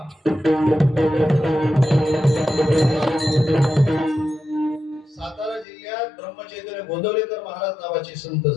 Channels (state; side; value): drops out; right; at 5.7 s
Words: सातारा जिल्ह्यात ब्रह्मचैतन्य गोंदवलेकर महाराज नावाचे संत